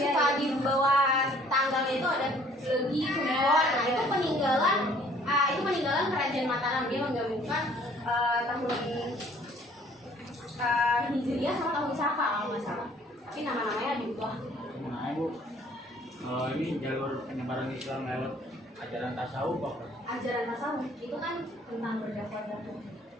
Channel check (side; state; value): both; normal; correlation 0.57